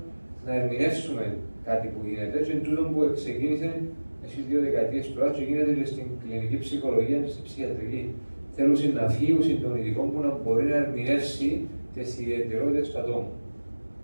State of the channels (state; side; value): inverted; both; correlation -1.00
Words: να ερμηνεύσουμε κάτι που γίνεται, και τούτο που ξεκίνησε εσείς 2 δεκαετίες τώρα και γίνεται και στην κλινική ψυχολογία και στην ψυχιατρική. Θέλουν να φύγουν των ειδικών που να μπορεί να ερμηνεύσει τις ιδιαιτερότητες του ατόμου.